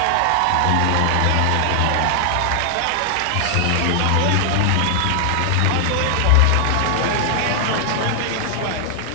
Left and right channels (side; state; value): both; different; correlation 0.00